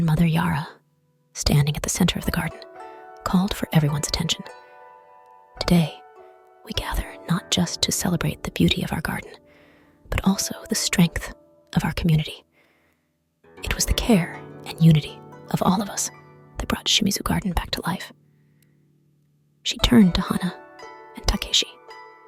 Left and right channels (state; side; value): identical; both; correlation 1.00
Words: Yara, standing at the center of the garden, called for everyone's attention. Today, we gather not just to celebrate the beauty of our garden, but also the strength of our community. It was the care and unity of all of us that brought Shimizu Garden back to life. She turned to Hana and Takeshi,